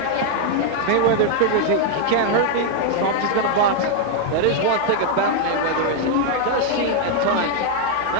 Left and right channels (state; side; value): different; both; correlation 0.00